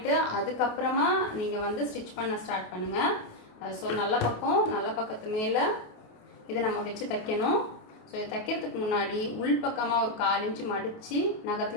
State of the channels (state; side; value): late; right; 28 ms